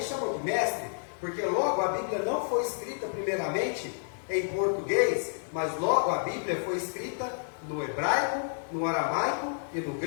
chamou de mestre, porque logo a Bíblia não foi escrita primeiramente em português, mas logo a Bíblia foi escrita no hebraico, no aramaico e no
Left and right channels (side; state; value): right; silent; digital silence